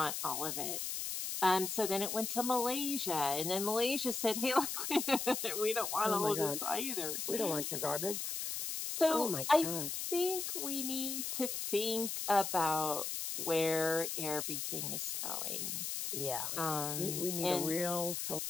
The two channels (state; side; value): noise; left; hiss, 3 dB below the sound